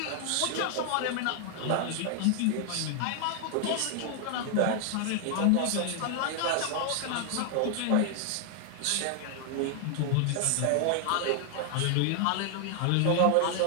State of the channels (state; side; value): different; both; correlation 0.00